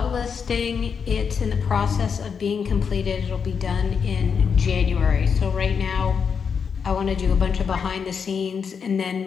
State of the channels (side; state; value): right; quieter; 6.4 dB